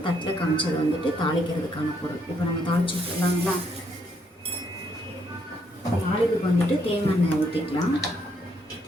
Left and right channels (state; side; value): normal; both; correlation 0.72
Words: தட்டில் காமிச்சது தாளிக்கிறதுக்கான பொருள். இப்போ நம்ம தாளிச்சு விட்டுலாங்களா? தாளிப்புக்கு தேங்காய் எண்ணெய் ஊற்றிக்கலாம்.